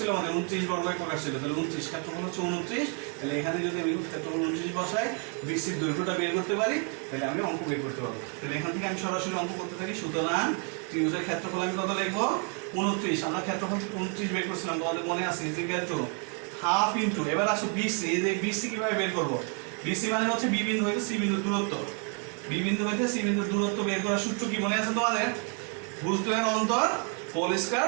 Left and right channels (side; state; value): left; quieter; 39.9 dB